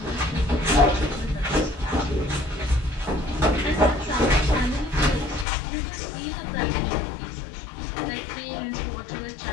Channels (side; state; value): right; drops out; at 5.5 s